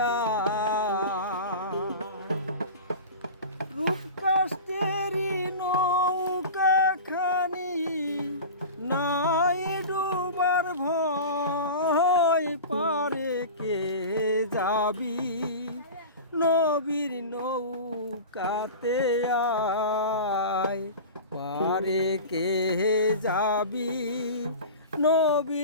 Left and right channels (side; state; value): both; inverted; correlation -0.32